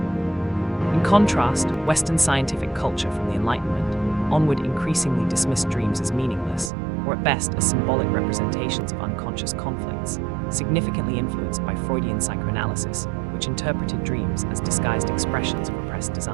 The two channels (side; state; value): left; drops out; at 6.7 s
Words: contrast, Western scientific culture from the Enlightenment onward increasingly dismissed dreams as meaningless, or at best as symbolic representations of unconscious conflicts, significantly influenced by Freudian psychoanalysis, which interpreted dreams as disguised expressions of repressed